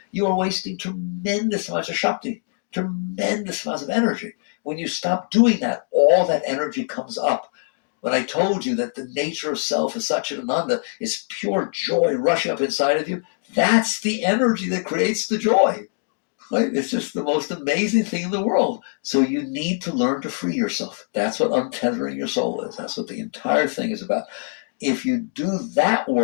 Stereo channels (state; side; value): silent; right; digital silence